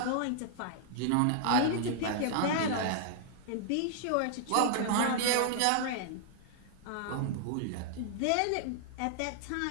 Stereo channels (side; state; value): both; different; correlation -0.01